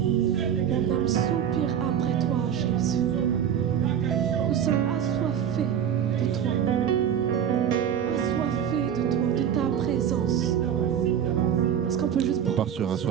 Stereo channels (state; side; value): quieter; left; 9.0 dB